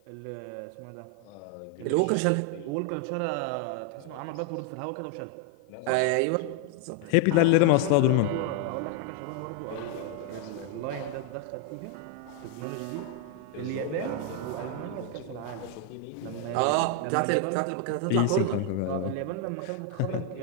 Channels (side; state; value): both; different; correlation 0.00